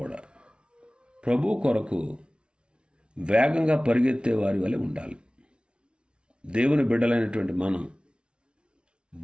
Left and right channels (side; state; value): left; late; 0.057 ms